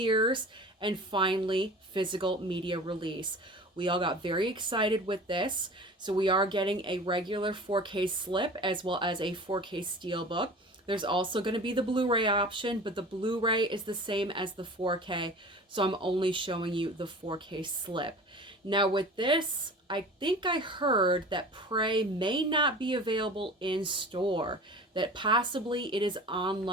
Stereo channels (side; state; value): both; normal; correlation 0.39